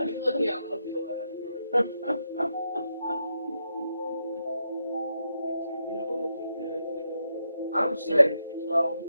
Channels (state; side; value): inverted; both; correlation -0.82